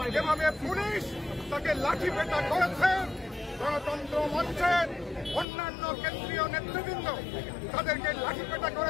যেভাবে পুলিশ তাকে লাঠিপেটা করেছে, গণতন্ত্র মঞ্চের অন্যান্য কেন্দ্রীয় নেতৃবৃন্দ তাদেরকে লাঠিপেটা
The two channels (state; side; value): drops out; right; at 5.5 s